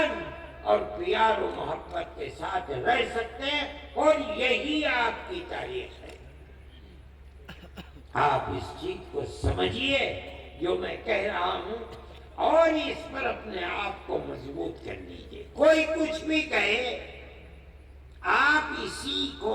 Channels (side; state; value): both; identical; correlation 1.00